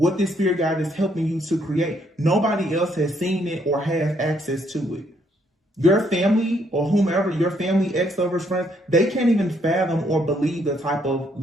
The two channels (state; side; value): normal; both; correlation 0.71